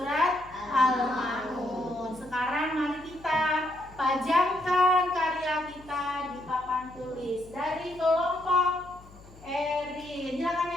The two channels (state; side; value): noise; left; hum, 22 dB below the sound